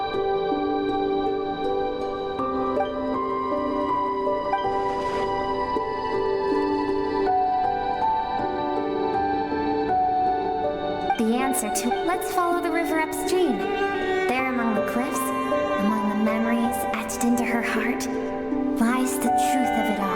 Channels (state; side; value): identical; both; correlation 1.00